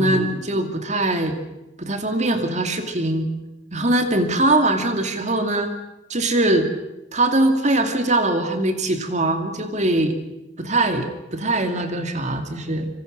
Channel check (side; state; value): both; normal; correlation 0.27